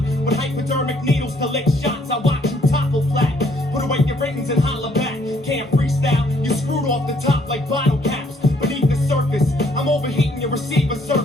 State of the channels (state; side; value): normal; both; correlation 0.66